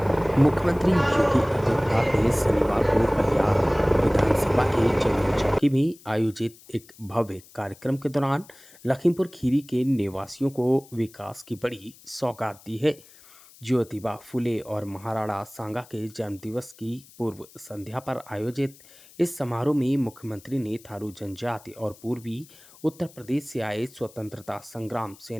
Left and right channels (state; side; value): noise; left; hiss, 24 dB below the sound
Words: मुख्यमंत्री योगी आदित्यनाथ ने शनिवार को बलिया विधानसभा के चंदन चौकी में आयोजित एक भव्य कार्यक्रम के दौरान लखीमपुर खीरी के निवासियों को विकास की बड़ी सौगात दी है। ज्योतिबा फुले और महाराणा सांगा के जन्मदिवस की पूर्व संध्या पर आयोजित इस समारोह में मुख्यमंत्री ने थारू जनजाति और पूर्वी उत्तर प्रदेश से आए स्वतंत्रता संग्राम